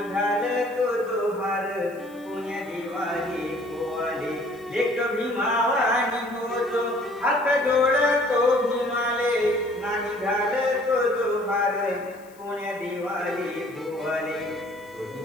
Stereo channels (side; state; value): left; noise; hiss, 27 dB below the sound